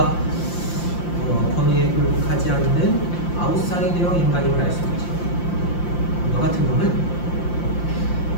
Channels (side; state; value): right; late; 5.8 ms